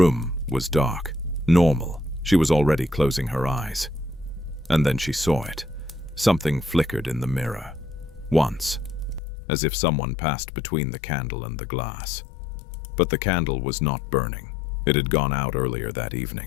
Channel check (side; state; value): right; drops out; at 9.2 s